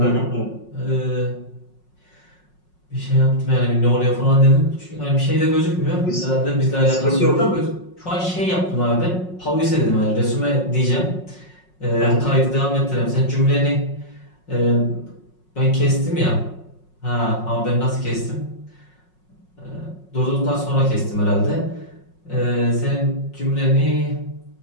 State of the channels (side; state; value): right; late; 5.5 ms